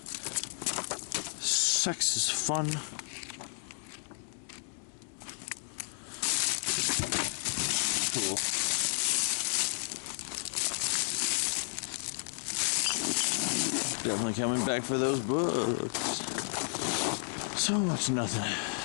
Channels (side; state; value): right; silent; digital silence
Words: Sex is fun. Cool. Definitely coming back for those books. So much nothing.